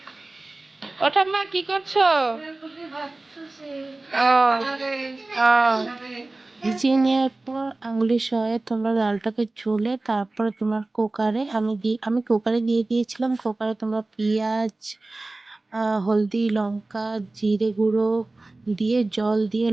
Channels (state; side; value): quieter; left; 3.0 dB